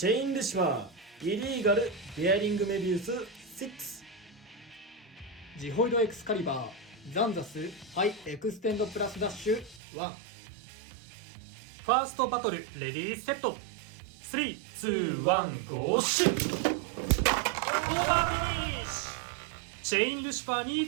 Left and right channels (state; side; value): drops out; left; at 9.8 s